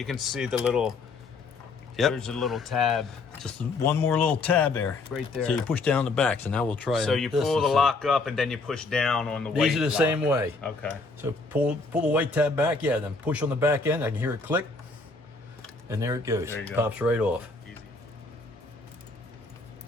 can see the little, Yep. there's a little tab Just one more little tab there. right there. So you push down the back. So now we'll try. So you this pull the and see. lock up and then you push down on the weight These are the lock. same way. Okay. So pull the weight tab back. Yeah, then push on the back end. I can hear it click, and there it goes. There you go. Pops right off. Easy.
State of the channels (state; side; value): quieter; right; 3.7 dB